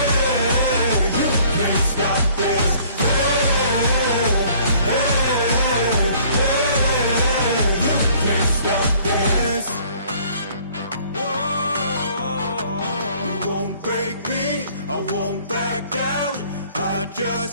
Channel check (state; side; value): inverted; both; correlation -0.56